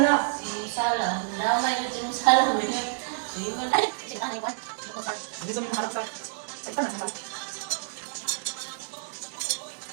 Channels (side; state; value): left; silent; digital silence